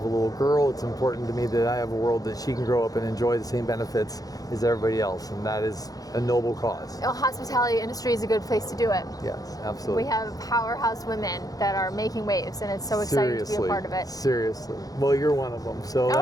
a little girl. It's important to me that I have a world that she can grow up and enjoy the same benefits as everybody else, and that is a noble cause. The hospitality industry is a good place to do it. Yes, absolutely. We have powerhouse women that are making waves, and it's so exciting to be a part of it. Seriously. Well, you're one of them, so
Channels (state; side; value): late; right; 0.18 ms